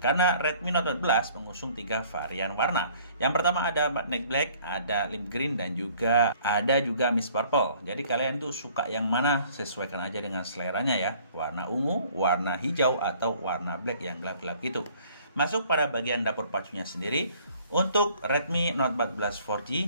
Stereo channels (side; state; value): both; inverted; correlation -0.57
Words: Karena Redmi Note 14 mengusung 3 varian warna. Yang pertama ada Magnetic Black, ada Lime Green, dan juga ada Mist Purple. Jadi kalian tuh suka yang mana, sesuaikan aja dengan seleranya ya. Warna ungu, warna hijau, atau warna black yang gelap-gelap gitu. Masuk pada bagian dapur pacunya sendiri. Untuk Redmi Note 14